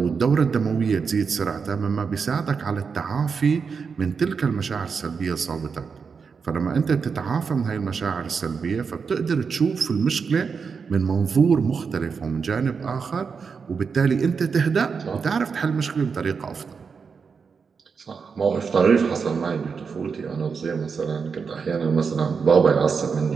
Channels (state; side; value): quieter; left; 5.6 dB